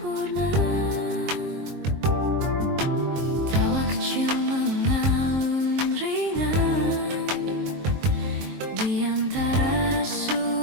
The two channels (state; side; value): late; left; 23 ms